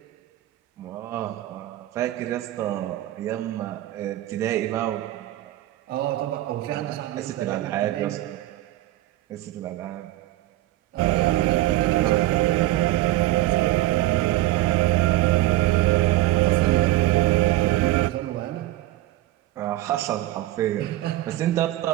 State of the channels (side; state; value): left; quieter; 15.9 dB